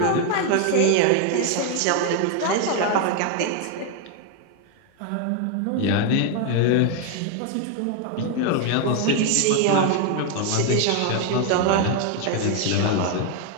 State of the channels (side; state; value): both; different; correlation 0.01